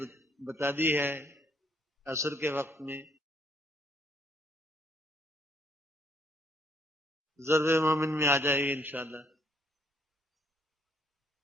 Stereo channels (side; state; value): both; normal; correlation 0.68